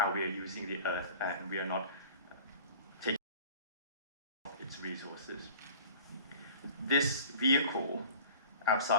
we are using the earth, and we are not taking its resources. This vehicle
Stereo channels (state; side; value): inverted; both; correlation -0.43